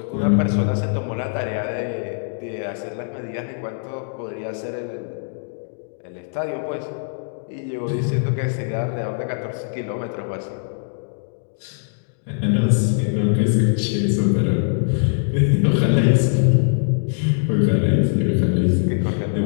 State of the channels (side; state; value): right; silent; digital silence